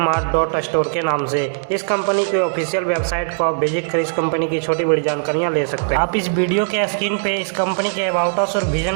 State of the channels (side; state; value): left; silent; digital silence